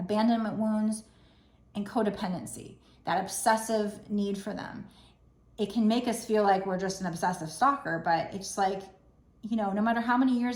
wounds and codependency, that obsessive need for them. It can make us feel like we're just an obsessive stalker, but it's like, you know, no matter how many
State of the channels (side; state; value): both; identical; correlation 1.00